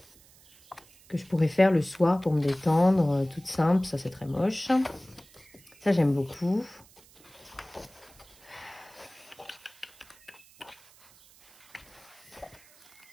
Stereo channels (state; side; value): noise; right; hiss, 26 dB below the sound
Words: je pourrais faire le soir pour me détendre, toute simple. Ça, c'est très moche. Ça, j'aime beaucoup.